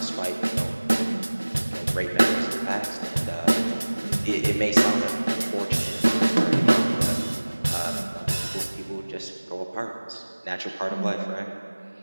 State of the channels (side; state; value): both; inverted; correlation -1.00